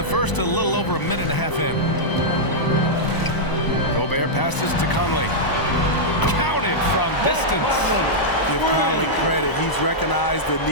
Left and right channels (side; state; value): right; late; 1.0 ms